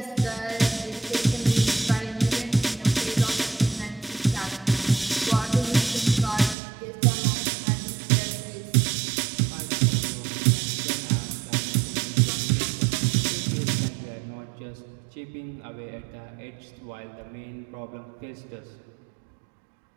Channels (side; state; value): left; drops out; at 6.6 s